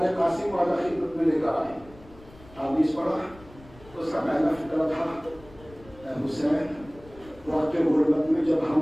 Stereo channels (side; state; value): left; noise; rumble, 22 dB below the sound